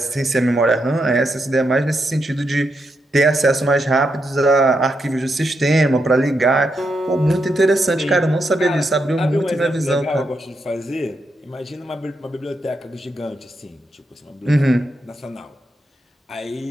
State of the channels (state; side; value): normal; both; correlation 0.83